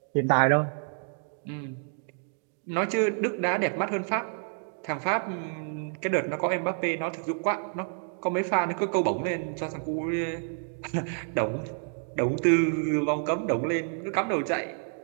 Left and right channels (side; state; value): left; silent; 59 dB below the other